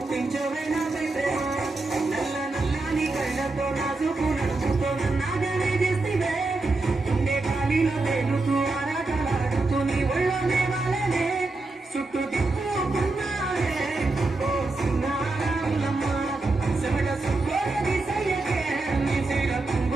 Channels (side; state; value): left; quieter; 3.3 dB